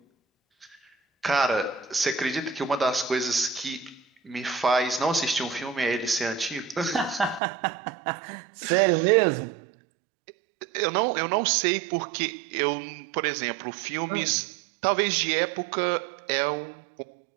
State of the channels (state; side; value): drops out; left; at 7.4 s